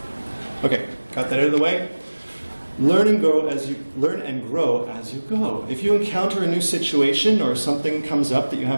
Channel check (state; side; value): inverted; both; correlation -1.00